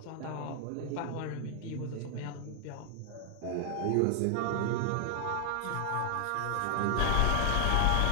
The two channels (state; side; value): different; both; correlation 0.00